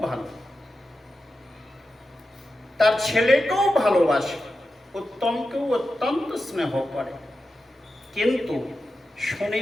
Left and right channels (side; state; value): both; normal; correlation 0.91